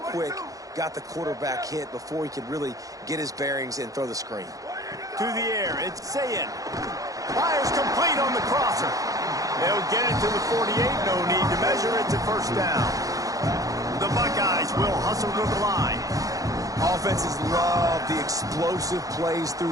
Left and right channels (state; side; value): late; left; 0.17 ms